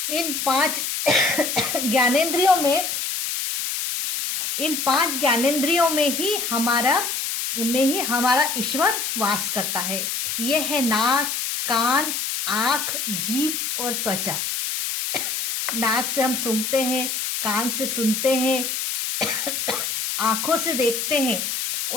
इन 5 ज्ञानेंद्रियों में ही हमारा ईश्वर वास करता है। यह है नाक, कान, आंख, जीभ और त्वचा। नाक से हम सूंघते हैं, कान से सुनते हैं, आंखों से देखते हैं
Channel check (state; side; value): noise; left; hiss, 2 dB below the sound